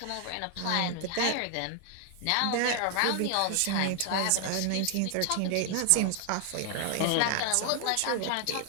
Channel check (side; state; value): both; different; correlation 0.00